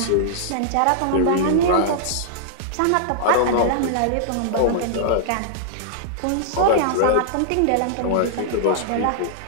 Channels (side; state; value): both; different; correlation -0.02